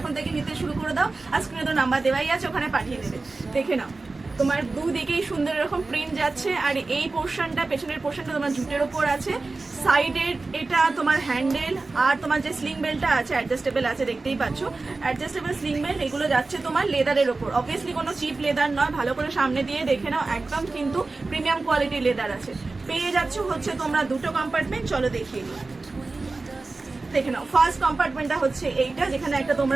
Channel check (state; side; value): quieter; left; 3.6 dB